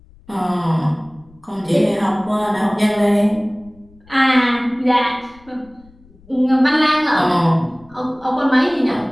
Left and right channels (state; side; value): noise; left; rumble, 27 dB below the sound